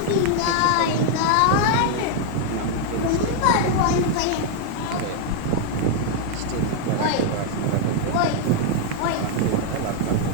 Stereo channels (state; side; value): different; both; correlation 0.00